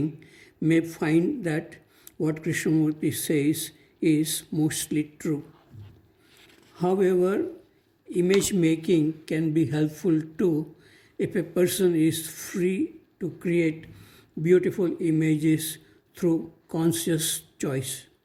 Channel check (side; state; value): both; identical; correlation 1.00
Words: may find that what Krishnamurti says is mostly true. However, image making can be helpful too if a person is free to create beautiful images through conscious choice.